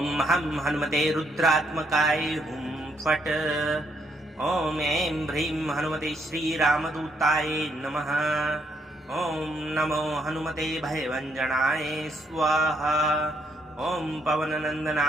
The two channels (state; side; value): normal; both; correlation 0.74